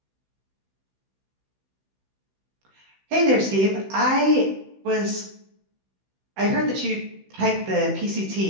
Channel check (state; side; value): late; left; 16 ms